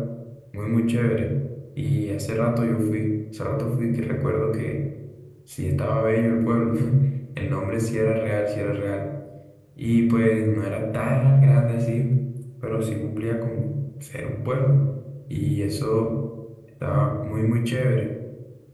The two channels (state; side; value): identical; both; correlation 1.00